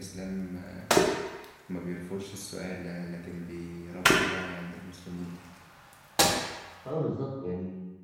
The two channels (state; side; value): identical; both; correlation 1.00